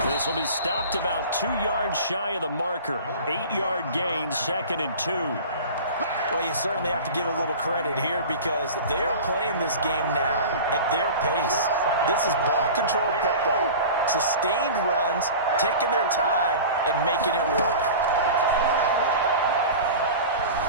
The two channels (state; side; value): inverted; both; correlation -0.36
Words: This will be stopped about 2 yards shy of the marker. 8-yard gain, 2nd and 2. Well, you certainly have to give a little credit here because they're playing this game now at their pace. This is ball control football, sustained runs, taking their time, and making it work.